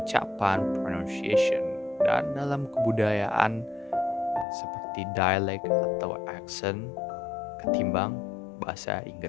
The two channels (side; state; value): right; drops out; at 4.5 s